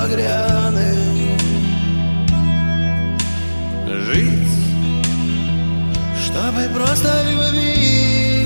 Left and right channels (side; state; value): both; inverted; correlation -1.00